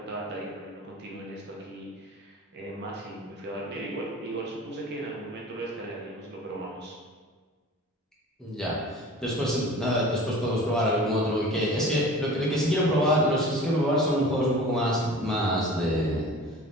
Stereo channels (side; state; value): both; normal; correlation 0.41